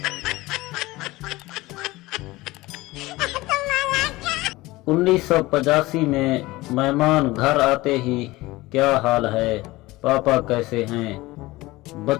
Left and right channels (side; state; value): right; quieter; 19.8 dB